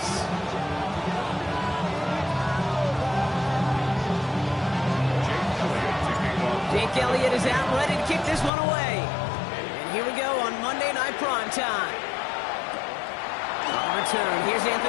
Jake Elliott is out, ready to kick this one away. And here we go on Monday Night Primetime. On return, here's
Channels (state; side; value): drops out; right; at 8.5 s